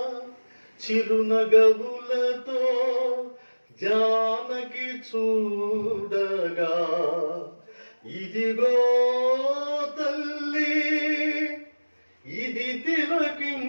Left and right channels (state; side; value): inverted; both; correlation -1.00